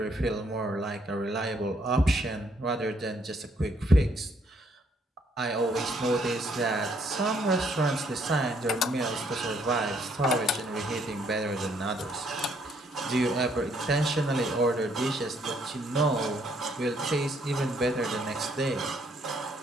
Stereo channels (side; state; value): both; normal; correlation 0.69